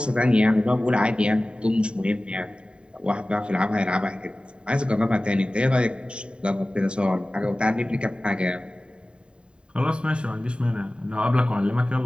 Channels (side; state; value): left; late; 0.053 ms